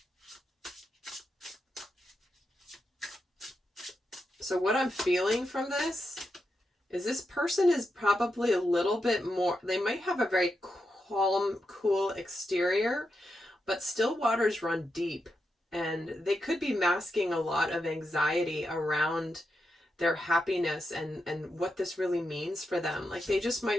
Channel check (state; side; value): normal; both; correlation 0.86